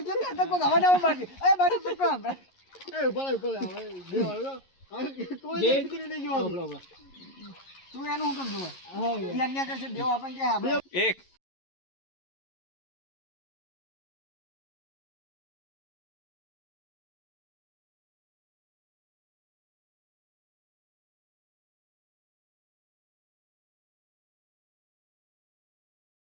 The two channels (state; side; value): late; right; 11 ms